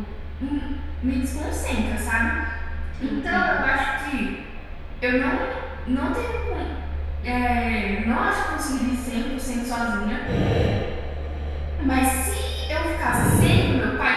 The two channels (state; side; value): identical; both; correlation 1.00